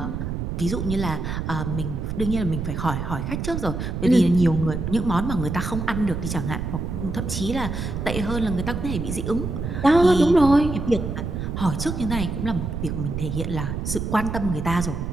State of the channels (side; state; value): right; noise; rumble, 4 dB below the sound